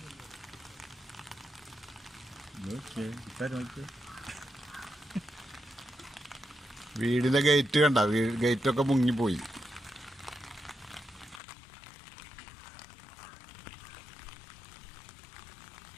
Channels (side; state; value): right; drops out; at 11.4 s